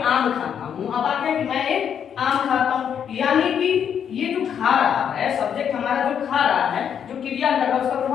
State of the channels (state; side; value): quieter; right; 8.3 dB